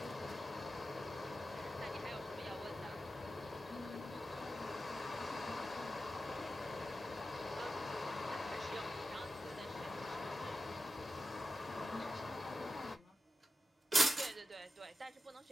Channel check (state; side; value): normal; both; correlation 0.91